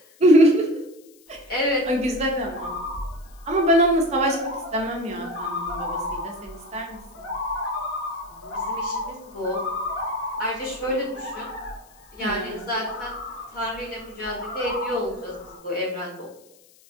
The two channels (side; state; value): left; noise; hiss, 27 dB below the sound